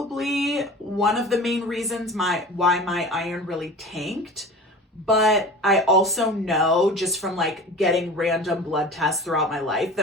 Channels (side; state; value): both; normal; correlation 0.37